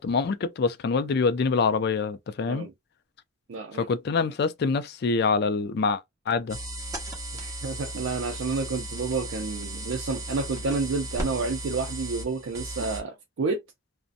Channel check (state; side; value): normal; both; correlation 0.06